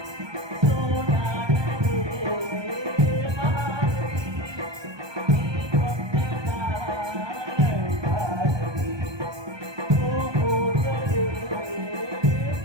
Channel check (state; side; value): late; left; 1.2 ms